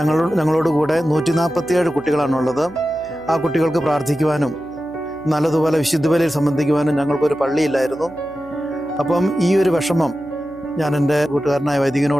ഞങ്ങളോട് കൂടെ 147 കുട്ടികളാണുള്ളത്. ആ കുട്ടികൾക്ക് പ്രാർത്ഥിക്കുവാനും നല്ലതുപോലെ വിശുദ്ധ ബലിയിൽ സംബന്ധിക്കുവാനും ഞങ്ങൾക്കൊരു പള്ളിയില്ലായിരുന്നു. അപ്പം ഈ ഒരു വിഷമം ഞാൻ എൻ്റെ കൂട്ടുകാരനായ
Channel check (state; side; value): noise; right; hum, 23 dB below the sound